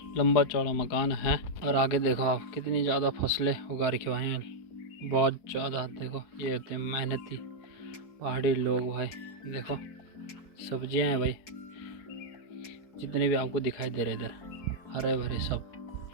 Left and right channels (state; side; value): late; right; 4.7 ms